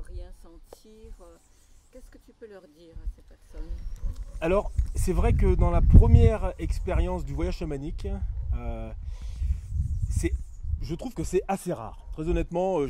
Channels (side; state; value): both; identical; correlation 1.00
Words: sentir. Qu'est-ce que tu peux leur dire à ces personnes? Alors, c'est vrai que dans la première expérience du voyage chamanique, euh, c'est, je trouve que c'est assez rare. Très honnêtement,